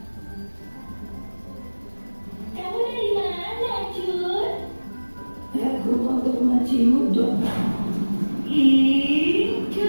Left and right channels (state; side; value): inverted; both; correlation -1.00